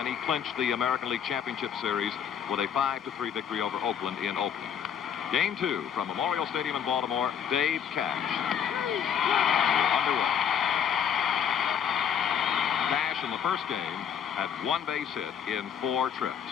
he clinched the American League Championship Series with a 5-3 victory over Oakland in Oakland. Game 2 from Memorial Stadium in Baltimore, Dave Cash underway. Cash in the first game had 1 base hit in 4 trips.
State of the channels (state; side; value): quieter; right; 8.2 dB